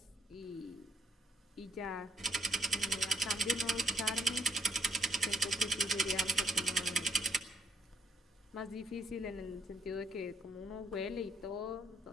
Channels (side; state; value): both; normal; correlation 0.73